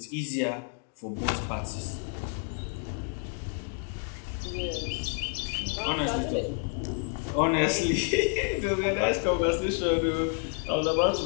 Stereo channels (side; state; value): right; quieter; 38.7 dB